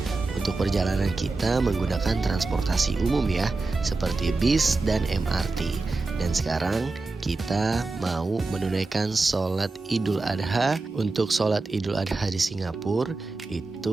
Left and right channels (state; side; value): quieter; left; 3.6 dB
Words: Untuk perjalanan kita menggunakan transportasi umum ya, seperti bis dan MRT. Dan sekarang kita mau menunaikan sholat Idul Adha. Untuk sholat Idul Adha di Singapura